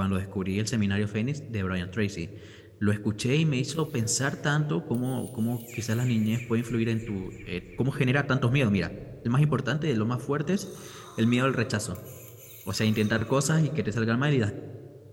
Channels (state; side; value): identical; both; correlation 1.00